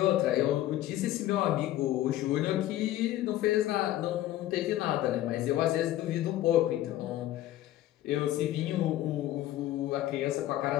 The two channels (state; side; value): quieter; right; 14.1 dB